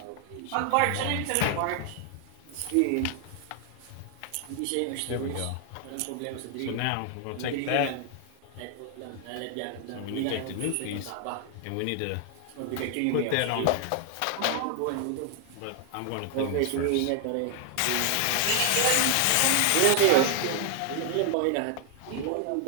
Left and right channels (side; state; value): both; different; correlation 0.00